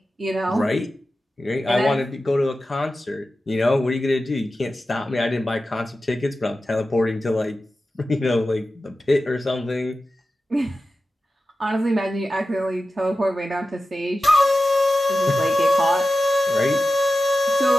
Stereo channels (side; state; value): both; normal; correlation 0.93